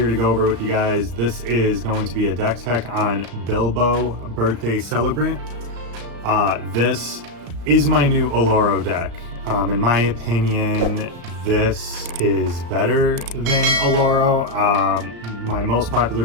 to go over with you guys. This is going to be a deck tech on Bilbo Birthday Celebrant. This is my new Oloro deck. In my opinion, this is better than Oloro. My most popular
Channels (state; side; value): late; left; 35 ms